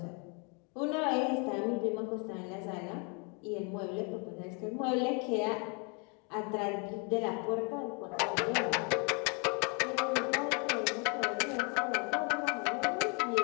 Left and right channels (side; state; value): right; quieter; 34.4 dB